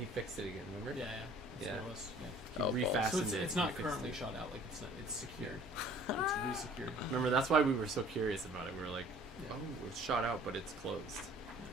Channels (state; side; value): normal; both; correlation 0.52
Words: fixed it again. Remember? Yeah, yeah. That's Yeah. what it was. Yeah. He Oh, refastened So it. it's he not fixed currently it. shot out. Like it's secured. It's re-secured. Remember, that's why we were so curious about it. We were like, Yeah. oh, it's shot out, but it's closed.